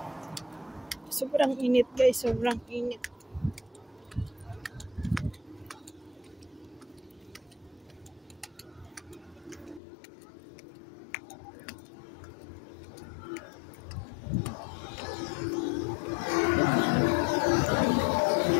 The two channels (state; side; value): drops out; right; at 9.8 s